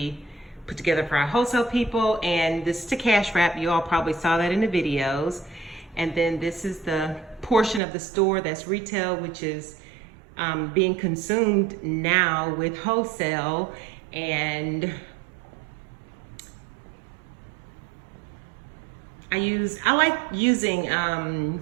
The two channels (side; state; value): left; drops out; at 7.8 s